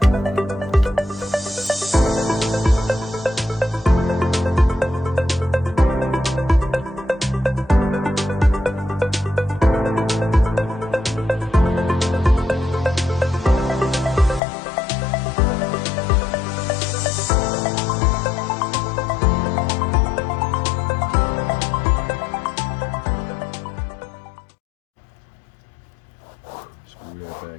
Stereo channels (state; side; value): drops out; right; at 14.4 s